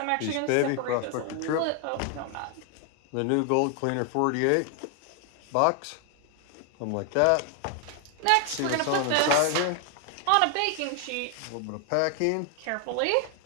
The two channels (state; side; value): different; both; correlation 0.00